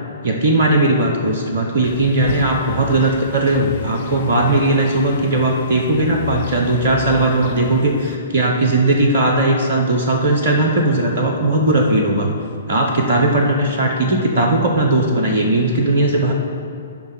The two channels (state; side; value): inverted; both; correlation -0.46